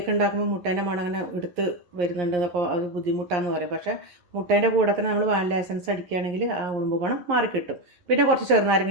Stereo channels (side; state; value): left; late; 11 ms